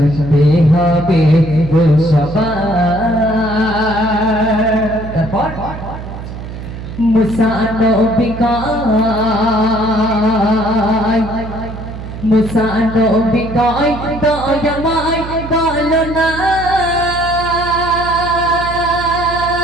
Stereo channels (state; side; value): noise; right; hum, 10 dB below the sound